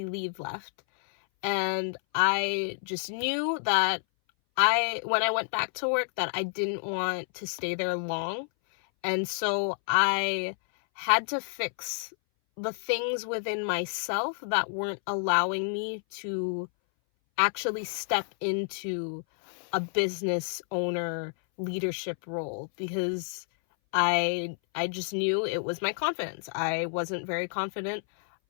left, and I just knew that when I went back to work, that I didn't want to stay there long, and so I had to fix the things within myself that weren't allowing me to actually step into a business owner leadership role, because I just knew it was my confidence. I wasn't very confident.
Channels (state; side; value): silent; right; 58 dB below the other